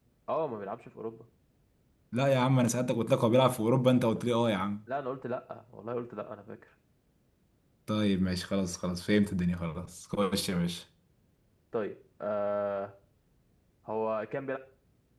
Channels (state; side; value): identical; both; correlation 1.00